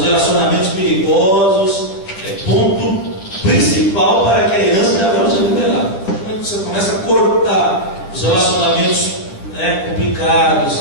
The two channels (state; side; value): late; right; 10 ms